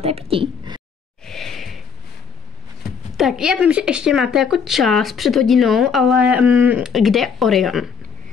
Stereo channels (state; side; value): quieter; right; 6.3 dB